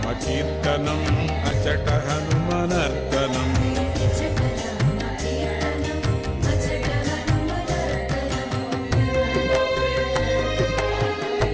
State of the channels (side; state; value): both; identical; correlation 1.00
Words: కీర్తనం అచట హనుమనర్తనం